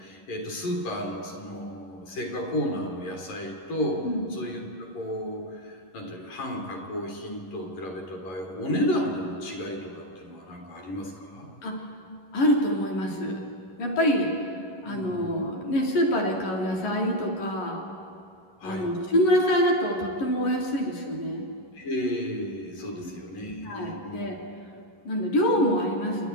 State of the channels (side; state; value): right; late; 11 ms